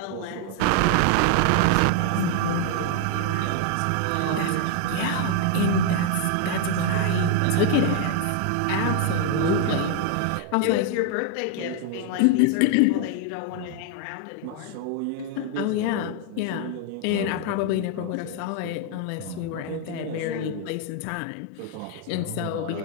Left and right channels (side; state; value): both; different; correlation 0.00